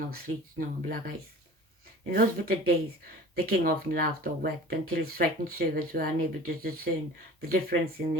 of sleet, snow, and black ice. In those bitter days, the king often laughed or wept until his frightened servants were unable to discern the difference in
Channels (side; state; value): both; normal; correlation 0.42